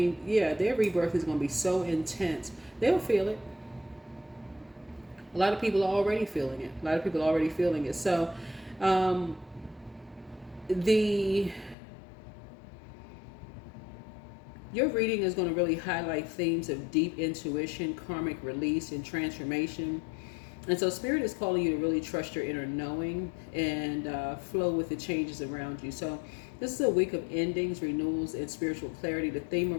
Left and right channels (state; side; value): drops out; right; at 11.8 s